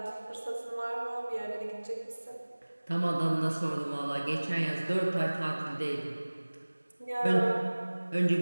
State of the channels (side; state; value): both; inverted; correlation -1.00